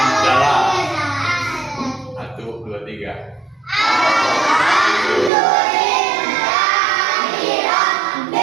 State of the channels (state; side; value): drops out; left; at 5.3 s